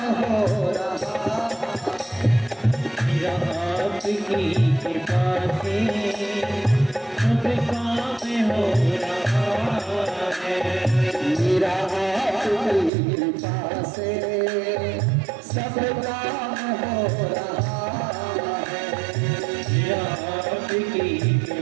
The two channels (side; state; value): left; drops out; at 12.9 s